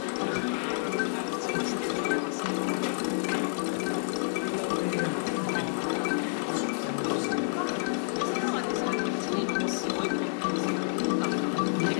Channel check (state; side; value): silent; right; digital silence